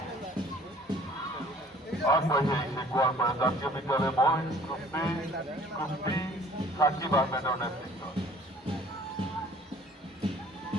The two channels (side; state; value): both; normal; correlation 0.54